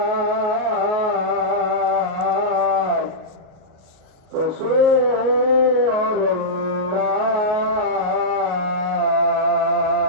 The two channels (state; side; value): late; left; 38 ms